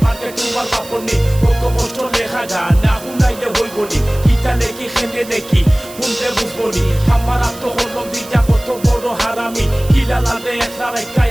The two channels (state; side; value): noise; right; hiss, 17 dB below the sound